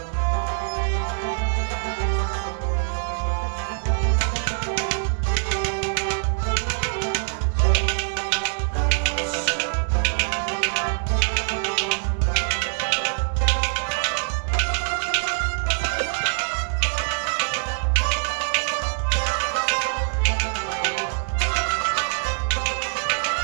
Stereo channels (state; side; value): silent; left; digital silence